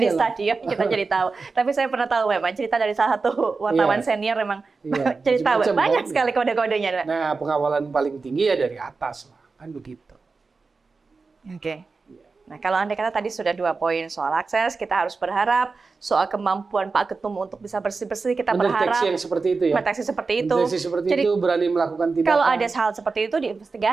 stadion kita jadi tahu. Tapi saya pernah tahu memang cerita dari salah satu wartawan senior memang cerita banyak sekali kode-kodenya. Nah pengawalan paling tinggi ya dari atas lah. Kan begitu. Nah, kalau Anda kata tadi sudah 2 poin soal akses, kita harus berharap soal kemampuan Pak Ketum untuk bisa bersih-bersih, kita berharap mendeteksi yang seperti itu ya. Mendeteksi seperti itu. Mendeteksi seperti itu, berani melakukan tindakan. Kalau ada hal seperti itu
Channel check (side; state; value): left; quieter; 4.3 dB